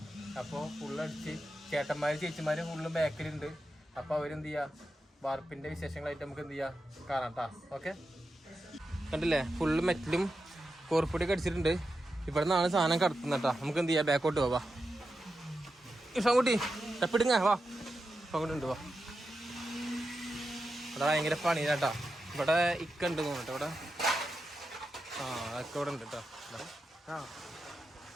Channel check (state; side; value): normal; both; correlation 0.89